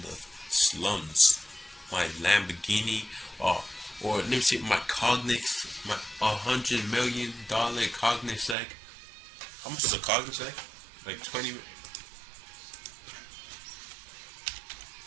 the slums, my Lamborghini, or let me see, my Cognix, my $100 million Cognizant. How much is a Cognizant? Like 20.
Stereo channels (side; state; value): left; drops out; at 8.6 s